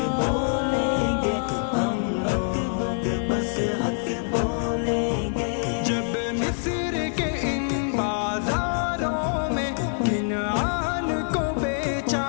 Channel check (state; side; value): silent; right; digital silence